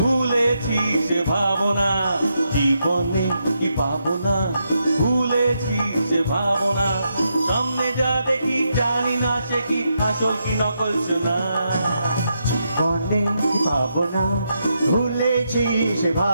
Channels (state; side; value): inverted; both; correlation -0.82